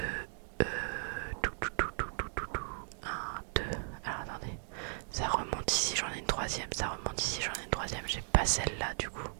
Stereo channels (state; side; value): silent; left; 53 dB below the other